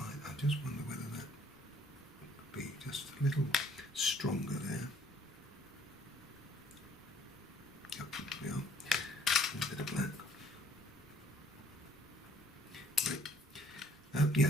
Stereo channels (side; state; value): both; normal; correlation 0.61